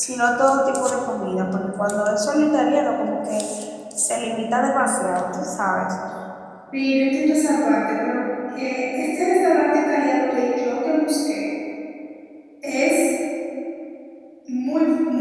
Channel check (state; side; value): identical; both; correlation 1.00